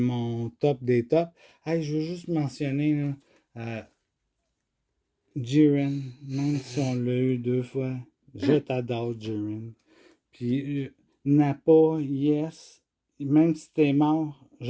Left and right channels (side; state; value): both; identical; correlation 1.00